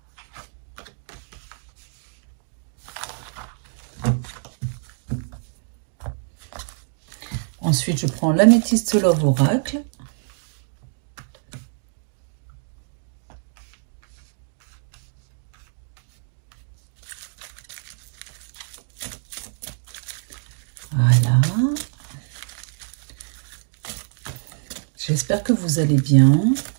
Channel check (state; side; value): silent; left; digital silence